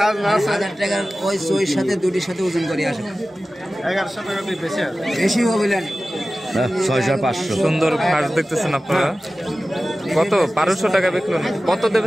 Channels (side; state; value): both; normal; correlation 0.96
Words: 1000 টাকা ওই সইর সাথে দুটির সাথে ওজন করে আসো। 1100 টাকা দিয়ে বেশি আছে, বেশি হবে না। 6500। সুন্দর ঘাস দেখতেছেন আপনারা। কত? 1200 টাকা বিকলেন। কত